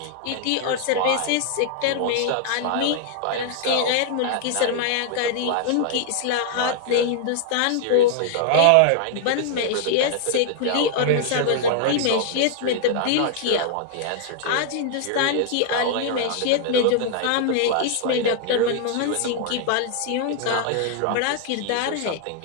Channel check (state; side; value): different; both; correlation 0.00